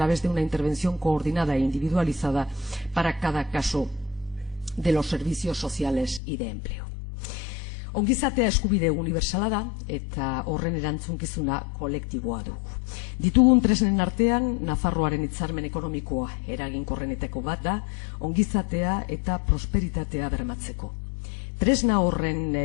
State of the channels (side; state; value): right; drops out; at 6.2 s